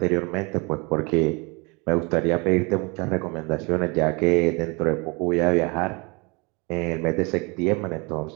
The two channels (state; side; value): quieter; left; 28.8 dB